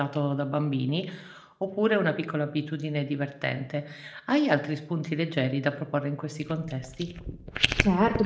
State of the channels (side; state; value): both; identical; correlation 1.00